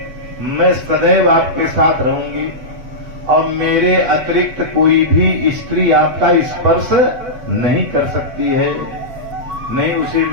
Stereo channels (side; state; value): left; late; 8.0 ms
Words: मैं सदैव आपके साथ रहूंगी और मेरे अतिरिक्त कोई भी स्त्री आपका स्पर्श नहीं कर सकती है, नहीं उसे